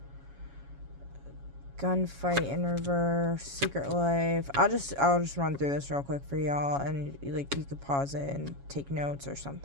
Gunfight in reverse, secret life. I'll just run through this real quick for y'all, and like you could pause it and take notes or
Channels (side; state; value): left; late; 7.2 ms